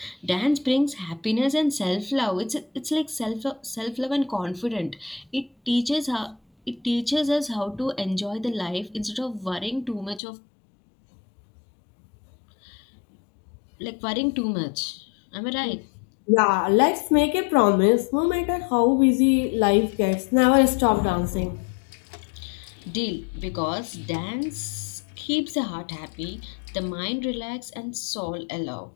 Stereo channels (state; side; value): drops out; right; at 10.2 s